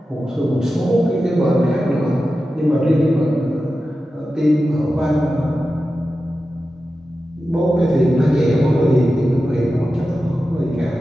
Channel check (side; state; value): both; normal; correlation 0.92